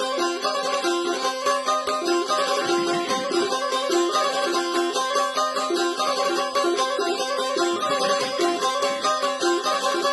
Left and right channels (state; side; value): identical; both; correlation 1.00